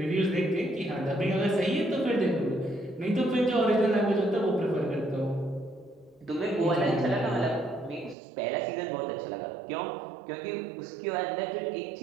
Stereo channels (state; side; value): drops out; left; at 8.2 s